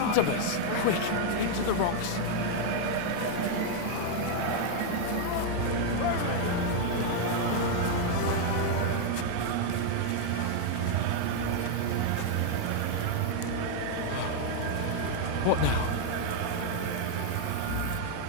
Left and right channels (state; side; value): different; both; correlation 0.00